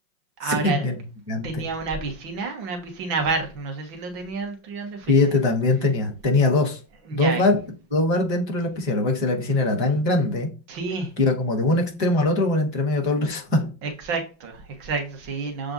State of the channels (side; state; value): left; late; 5.5 ms